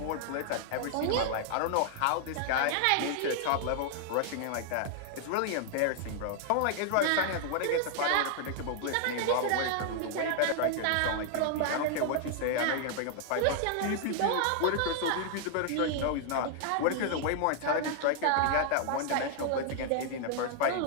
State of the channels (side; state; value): both; different; correlation 0.00